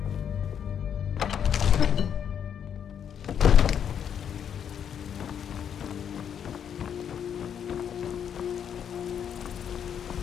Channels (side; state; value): right; quieter; 8.5 dB